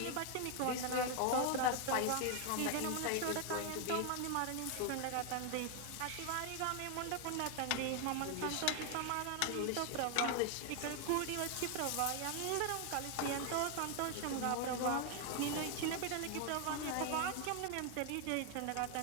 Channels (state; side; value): different; both; correlation 0.00